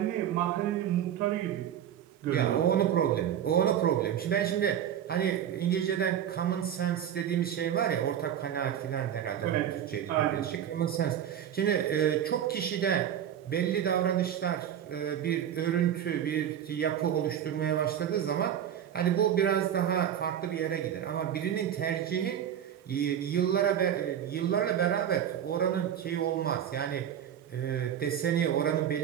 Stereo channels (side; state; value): left; quieter; 9.8 dB